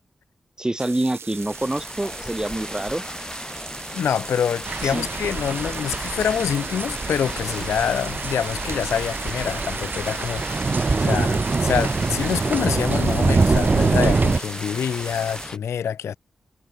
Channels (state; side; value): normal; both; correlation 0.77